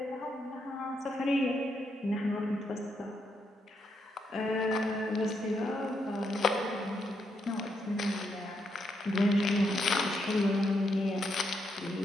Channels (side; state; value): both; normal; correlation 0.79